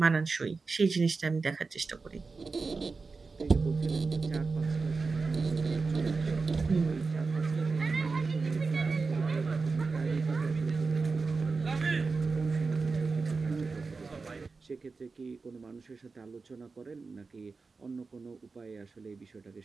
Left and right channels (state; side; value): quieter; left; 4.3 dB